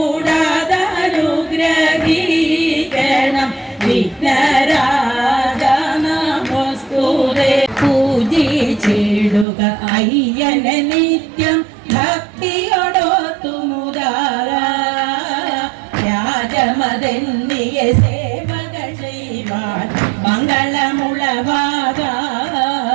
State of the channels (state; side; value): drops out; left; at 9.5 s